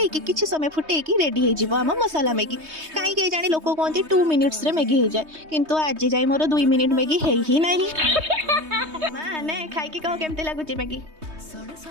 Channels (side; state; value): left; late; 3.2 ms